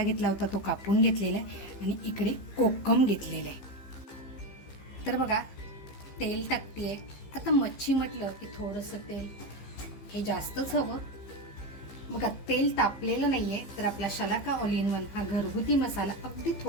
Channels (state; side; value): late; right; 15 ms